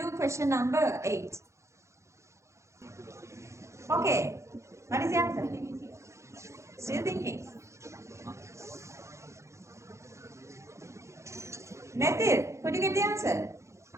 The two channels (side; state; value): left; late; 0.14 ms